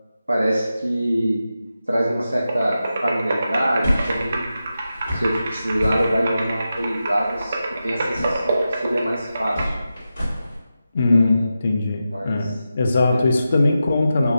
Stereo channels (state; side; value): inverted; both; correlation -0.91